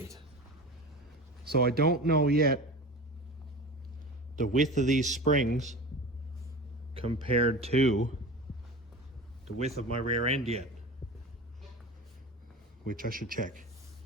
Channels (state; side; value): normal; both; correlation 0.32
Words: So I don't know yet the width of these springs compared to the width of my rear end yet, which I should check.